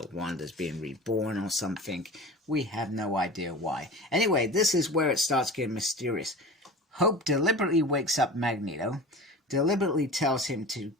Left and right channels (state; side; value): normal; both; correlation 0.35